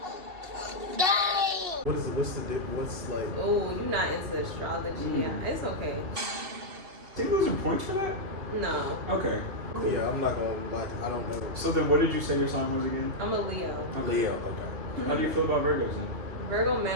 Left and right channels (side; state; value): left; late; 2.7 ms